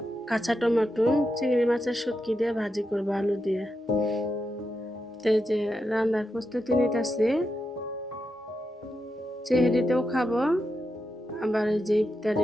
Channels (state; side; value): normal; both; correlation 0.86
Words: কাঁচা টমেটো চিংড়ি মাছের শুটকি দিয়ে ভাজি করব আলু দিয়ে। তো এই যে রান্নার প্রস্তুতি নিতেছি, চেহারিতেও খাবো, আবার এই যে